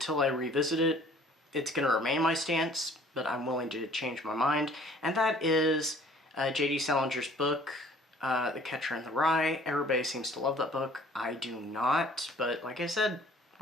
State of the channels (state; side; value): normal; both; correlation 0.54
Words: I revisit it, it's going to remain my stance, but I'm willing to change my mind, and that is J.D. Salinger's book, The Catcher in the Rye. Everybody seems to love that book. I do not, but like I said,